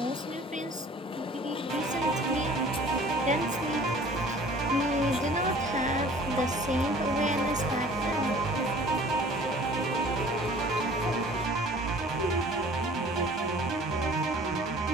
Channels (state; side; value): normal; both; correlation 0.49